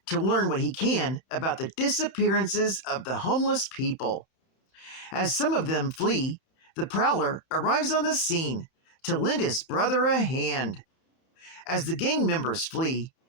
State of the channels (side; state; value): right; late; 31 ms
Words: to learn what he can about the disappearances of the homeless people. As some of them flee, the Prowler arrives on the scene to lend his brother a hand. As the gang members flee,